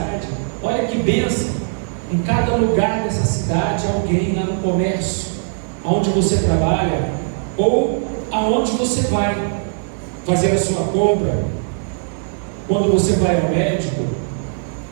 Olha que bênção! Em cada lugar dessa cidade, alguém lá no comércio, onde você trabalha, ou aonde você vai fazer a sua compra, quando você vai ao médico.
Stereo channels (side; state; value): left; silent; digital silence